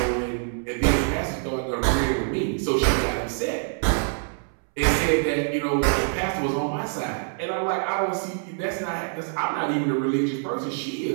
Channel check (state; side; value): silent; left; 62 dB below the other